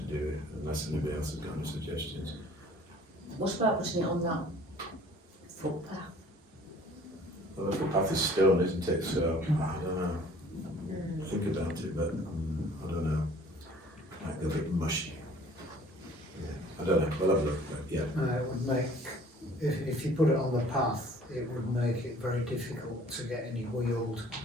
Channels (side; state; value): both; normal; correlation 0.52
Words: do it, unless anybody else has got any suggestions. What about putting it on that footpath? Well, the footpath is stone, isn't it? So I don't know. Think about it, but I don't know. Might go a bit mushy. Yeah, I don't know. We'll have a look. But yeah. It would make, if you put it on the path, it would make it very difficult to get any wheeled.